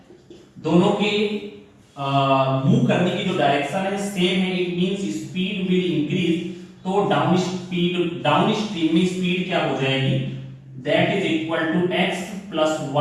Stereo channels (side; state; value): both; identical; correlation 1.00